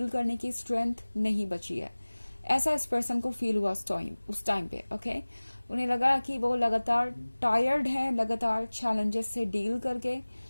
करने की स्ट्रेंथ नहीं बची है। ऐसा इस पर्सन को फील हुआ उस टाइम पे। ओके, उन्हें लगा कि वो लगातार टायर्ड है, लगातार चैलेंजेस से डील करके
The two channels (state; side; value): inverted; both; correlation -1.00